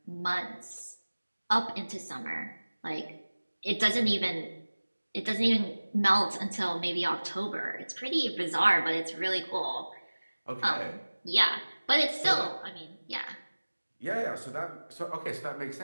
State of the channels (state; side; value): inverted; both; correlation -1.00